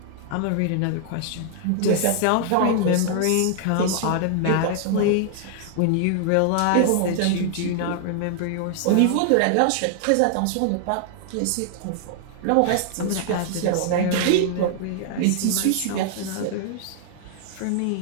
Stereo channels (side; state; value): both; different; correlation 0.00